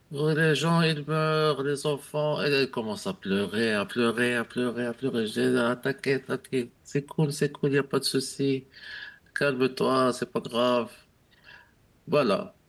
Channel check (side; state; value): both; identical; correlation 1.00